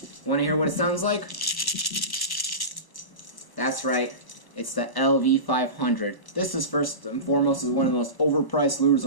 Want to hear what it sounds like? That's right, it's the 𝐿V500. This is first and foremost one of the most overpriced lures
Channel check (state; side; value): late; right; 1.0 ms